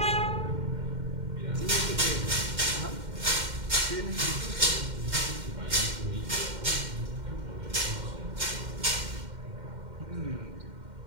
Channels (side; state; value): left; late; 2.1 ms